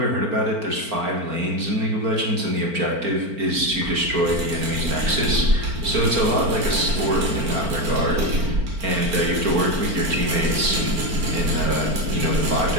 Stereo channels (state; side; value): late; left; 4.4 ms